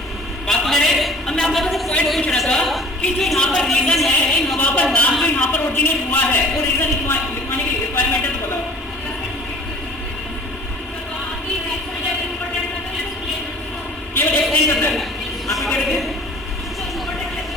बात मेरे अब मैं आप लोगों से पॉइंट पूछ रहा था कि जो यहाँ पर रीजन है, इन हवा पर नाम जो यहाँ पर ओरिजिनेट हुआ है वो रीजन लिखवाने की रिक्वायरमेंट है तो बताओ। केवल एक्सप्लेन करना है, आप क्या कहते हैं?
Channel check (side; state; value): both; normal; correlation 0.49